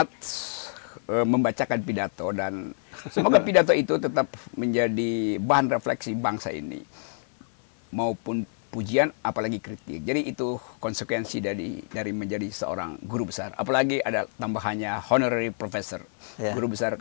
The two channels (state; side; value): silent; right; 57 dB below the other